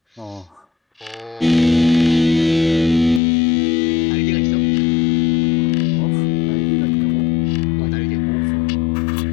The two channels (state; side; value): drops out; right; at 3.2 s